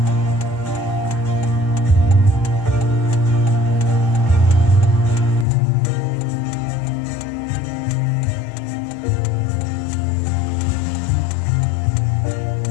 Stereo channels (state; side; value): drops out; right; at 5.5 s